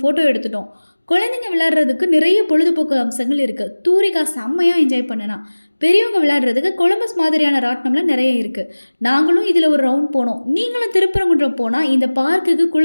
ஃபோட்டோ எடுத்துட்டோம். குழந்தைங்க விளையாடுறதுக்கு நிறைய பொழுதுபோக்கு அம்சங்கள் இருக்குது. தூரிகா செம்மையாக என்ஜாய் பண்ணனா. பெரியவங்க விளையாடுறதுக்கு கொலம்பஸ் மாதிரியான ராட்டினம்லாம் நிறைய இருக்குது. நாங்களும் இதில் ஒரு ரவுண்ட் போனோம். நீங்களும் திருப்பரங்குன்றம் போனால் இந்த பார்க்குக்கு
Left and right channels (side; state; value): both; inverted; correlation -1.00